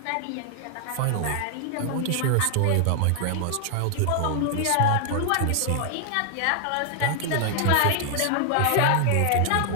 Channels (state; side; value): different; both; correlation 0.00